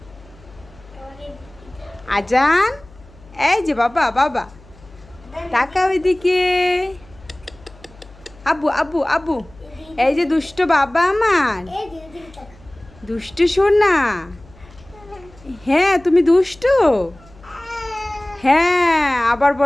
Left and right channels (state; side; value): noise; left; hum, 24 dB below the sound